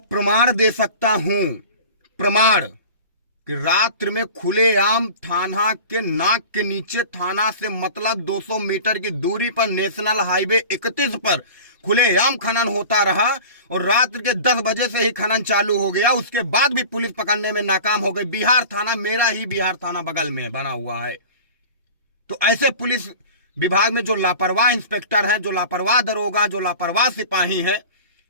दे सकता हूं, प्रमाण, कि रात्रि में खुलेआम थाना के नाक के नीचे, थाना से मतलब 200 मीटर की दूरी पर नेशनल हाईवे 31 पर खुलेआम खनन होता रहा और रात्रि के 10 बजे से ही खनन चालू हो गया। उसके बाद भी पुलिस पकड़ने में नाकाम हो गई। बिहार थाना, मेरा ही बिहार थाना बगल में बना हुआ है। तो ऐसे पुलिस विभाग में जो लापरवाह इंस्पेक्टर हैं, जो लापरवाह दरोगा, जो लापरवाह सिपाही हैं,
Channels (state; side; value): inverted; both; correlation -0.37